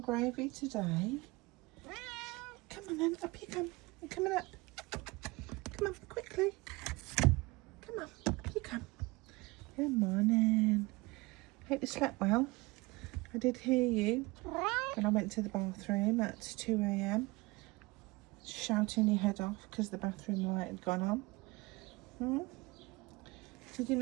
gravy today. Come on then, up you come. You're coming up. Come on, quickly. Come on, up you come. Good morning. Hope you slept well. I did hear you when I went to the bathroom at 2 a.m. shouting your head off because the bathroom light had gone on. Did you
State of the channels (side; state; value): left; quieter; 23.3 dB